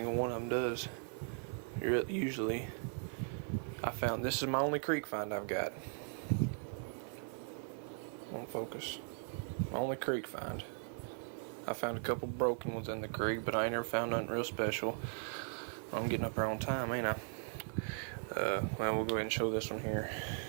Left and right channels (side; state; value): left; silent; 52 dB below the other